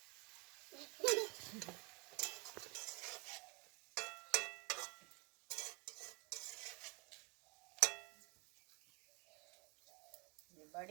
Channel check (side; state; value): left; quieter; 30.5 dB